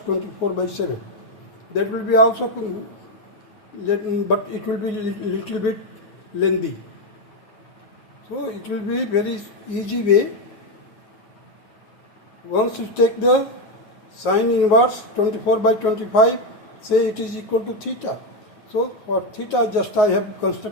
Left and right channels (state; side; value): late; right; 9.4 ms